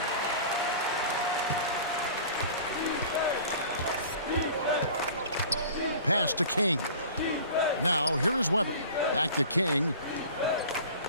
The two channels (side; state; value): both; inverted; correlation -0.42